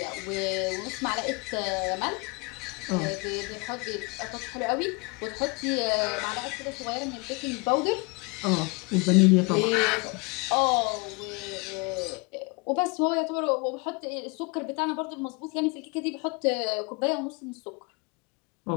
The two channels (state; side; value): quieter; right; 29.1 dB